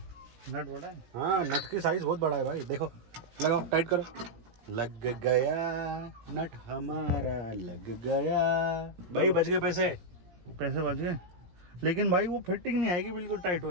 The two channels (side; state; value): left; late; 17 ms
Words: नट बड़ा है? हाँ, नट की साइज बहुत बड़ा है भाई, देखो। लगाओ, टाइट करो। लग गया नट हमारा, लग गया भाई, बच गए पैसे बच गए। लेकिन भाई वो फिटिंग नहीं आएगी बिल्कुल टाइट